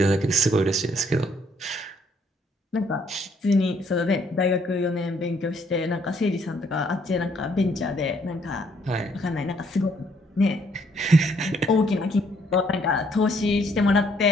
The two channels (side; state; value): both; normal; correlation 0.67